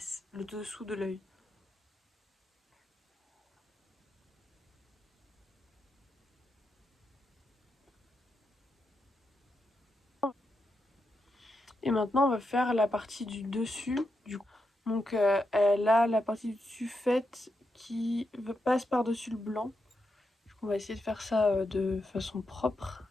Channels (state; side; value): normal; both; correlation 0.85